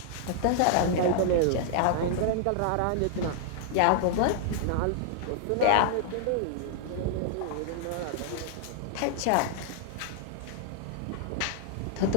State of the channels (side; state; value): both; different; correlation -0.01